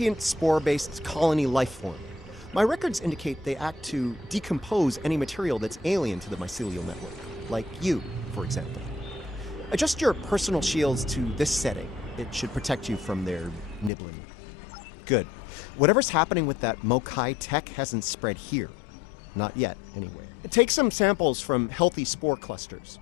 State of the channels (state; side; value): drops out; right; at 13.9 s